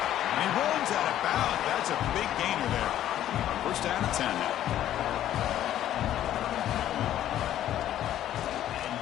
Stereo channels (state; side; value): quieter; right; 12.0 dB